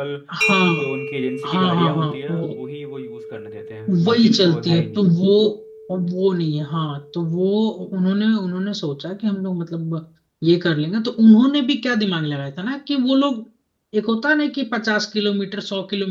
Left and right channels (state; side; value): identical; both; correlation 1.00